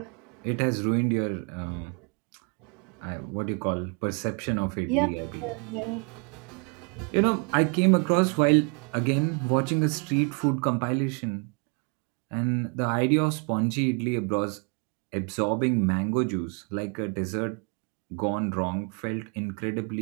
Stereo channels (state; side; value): quieter; left; 36.1 dB